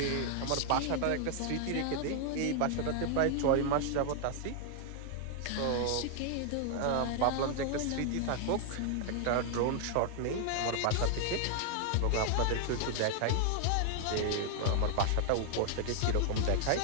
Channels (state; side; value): different; both; correlation 0.00